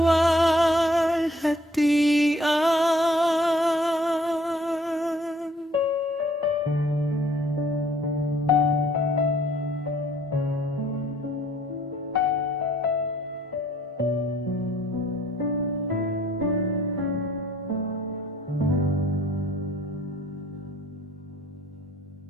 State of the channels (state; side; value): normal; both; correlation 0.60